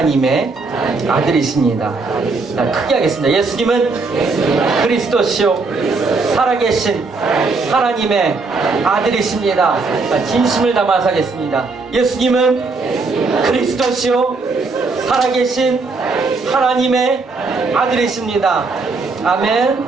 아들이십니다. 자, 크게 하겠습니다. 예수님은 그리스도시요 살아계신 하나님의 아들이십니다. 자, 진심을 담아서 하겠습니다. 예수님은 그리스도시요 살아계신 하나님의 아들이십니다. 아멘,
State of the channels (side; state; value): left; quieter; 3.9 dB